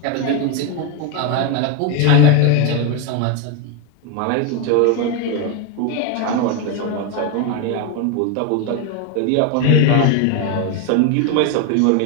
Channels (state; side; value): different; both; correlation 0.02